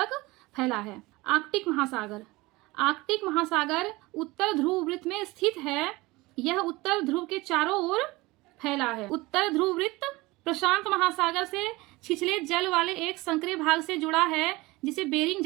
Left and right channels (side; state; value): left; quieter; 21.5 dB